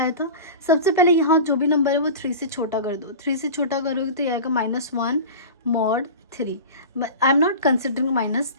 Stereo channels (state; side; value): inverted; both; correlation -0.32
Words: था, सबसे पहले यहाँ जो भी नंबर है वो 3 से छोटा कर दो, 3 से छोटा करोगे तो ये आएगा -1 mod 3। I am not considering minus,